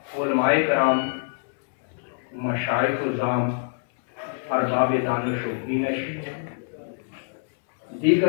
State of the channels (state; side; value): silent; right; digital silence